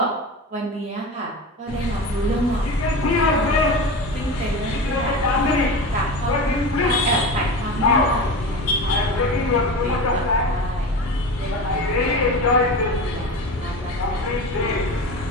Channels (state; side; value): normal; both; correlation 0.28